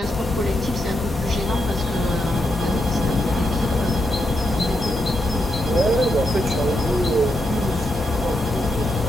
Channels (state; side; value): normal; both; correlation 0.82